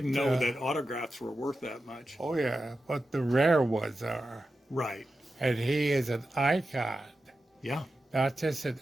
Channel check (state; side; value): normal; both; correlation 0.91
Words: know that autographs were worth that much. Oh yeah, but the rare ones are. Right. And he is an icon. Yeah. Not just an